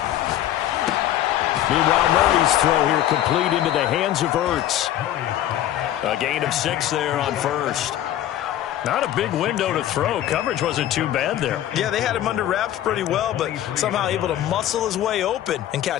Meanwhile, Murray's throw here complete into the hands of Ertz. A gain of 6 there on first. Not a big window to throw. Coverage wasn't too bad there. Yeah, they had him under wraps pretty well, but somehow able to muscle his way open and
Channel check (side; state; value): right; quieter; 12.4 dB